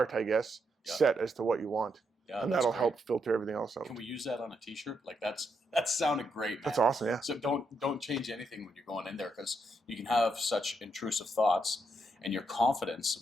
I guess, set as to what you want. Yeah, and that'll help filter everything else out. Can we use that on a T-shirt? Like that sounded great, man. That's awesome, yeah. So don't change anything when you're going in there, because you can have such intrusive thoughts, and your confidence,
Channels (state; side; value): normal; both; correlation 0.79